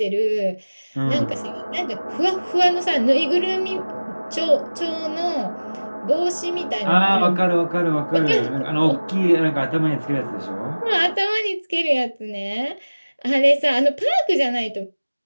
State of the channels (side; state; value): both; inverted; correlation -1.00